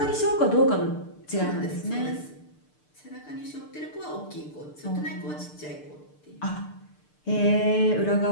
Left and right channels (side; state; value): right; late; 6.7 ms